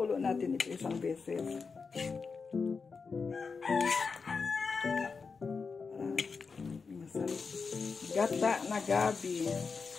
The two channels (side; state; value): right; quieter; 5.0 dB